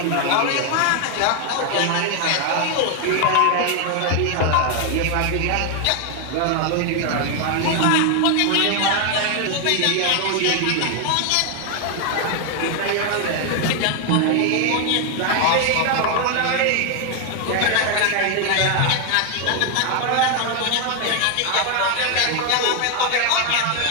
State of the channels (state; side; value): different; both; correlation 0.01